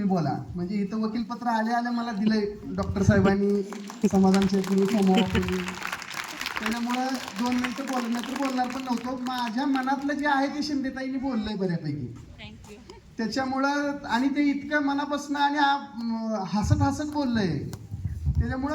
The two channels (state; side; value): identical; both; correlation 1.00